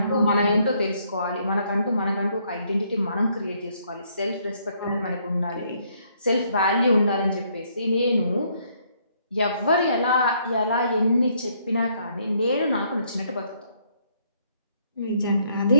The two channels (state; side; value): inverted; both; correlation -0.69